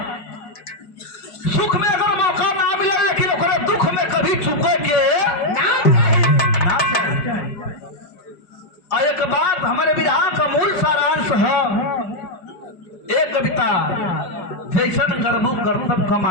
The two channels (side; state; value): right; late; 5.0 ms